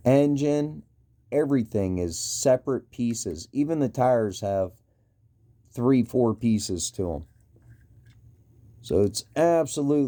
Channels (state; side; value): identical; both; correlation 1.00